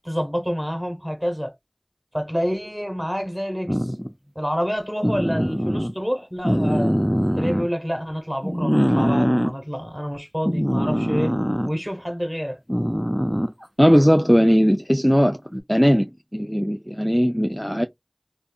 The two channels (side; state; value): both; identical; correlation 1.00